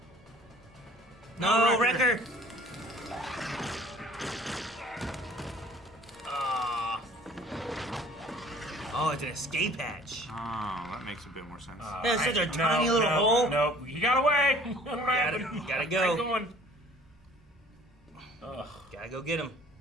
No, Wrecker! Ah. Oh, it's an escape hatch. Oh, that makes a bit more sense. That's such a tiny little hole. No, he got away. What happened? Gotta go. Keep going. Gotta go get him.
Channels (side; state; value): both; normal; correlation 0.51